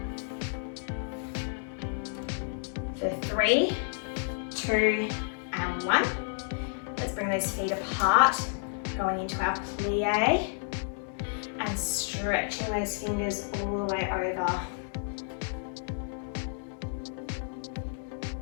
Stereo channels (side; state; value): right; silent; digital silence